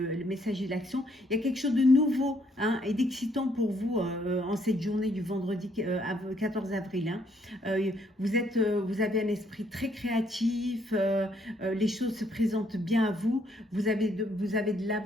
messager de l'action, il y a quelque chose de nouveau hein, et d'excitant pour vous en cette journée du vendredi 14 avril. Hein. Vous avez un esprit très créatif, les choses se présentent bien à vous, vous avez de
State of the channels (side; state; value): both; normal; correlation 0.69